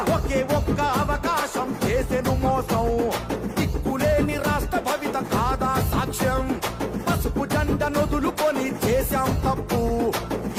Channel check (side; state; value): both; identical; correlation 1.00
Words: ఒకే ఒక్క అవకాశం చేసెను మోసం, దిక్కులేని రాష్ట్ర భవిత కాదా సాక్ష్యం, పసుపు జెండ నొదులుకొని చేశాం తప్పు,